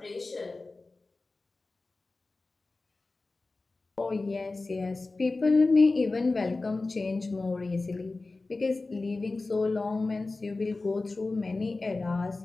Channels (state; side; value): quieter; right; 3.4 dB